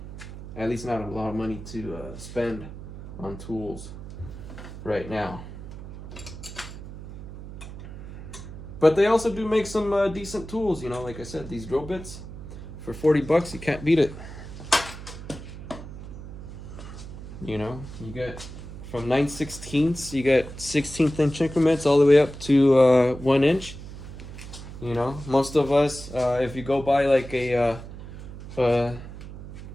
At least not a lot of money to spend on tools right now. But they also do make some decent tools, like I said, these drill bits for $40, you can't beat it. You get from 9/16, you get 16th inch increments all the way up to 1 inch. Most of us, if you go buy like a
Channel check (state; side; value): noise; right; hum, 12 dB below the sound